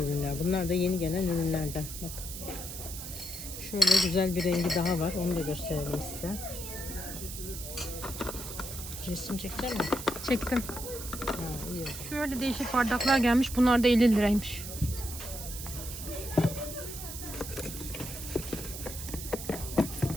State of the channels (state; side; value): noise; right; hiss, 9 dB below the sound